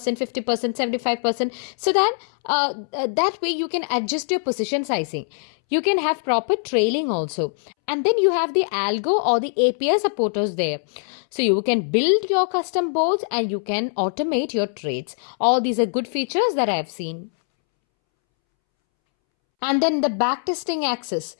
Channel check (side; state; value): right; silent; 64 dB below the other